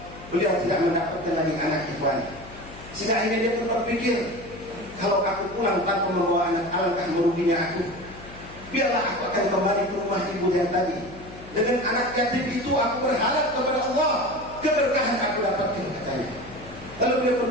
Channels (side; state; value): left; noise; hum, 17 dB below the sound